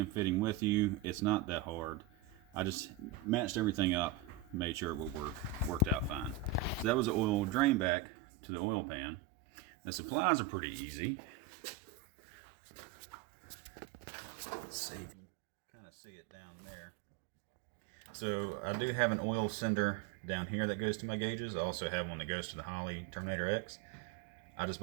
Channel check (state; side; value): drops out; left; at 7.9 s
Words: fitting with you. It's not that hard. I just matched everything up, made sure it would work. Worked out fine. So that was the oil drain back to the oil pan. The supplies are pretty easy. Let's see. Kind of see it down there. So I do have an oil sender down here that goes to my gauges. I also have one that goes to the Holley Terminator X. I just